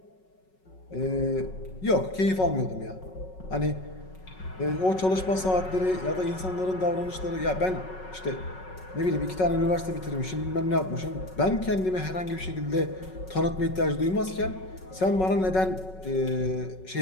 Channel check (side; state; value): right; late; 5.4 ms